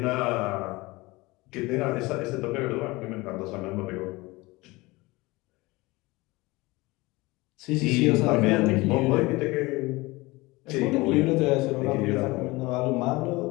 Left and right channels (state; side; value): quieter; right; 22.2 dB